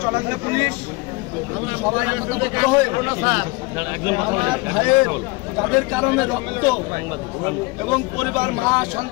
চুয়াডাঙ্গা পুলিশ সবাই একতাবদ্ধ হয়ে আমার ভাইয়ের যাদের কারণে রক্ত এবং পরিবার, মা,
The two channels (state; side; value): quieter; right; 24.6 dB